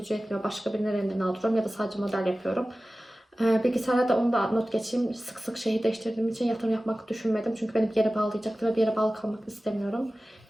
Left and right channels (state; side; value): normal; both; correlation 0.96